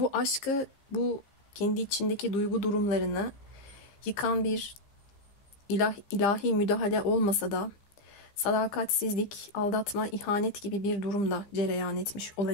aşkı, bu kendi içindeki duygu durumlarını yıkan bir ilahi müdahale olmasa da sadakatsizlik, aldatma, ihanet gibi bir durumda cereyan etmiş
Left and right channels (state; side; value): late; right; 15 ms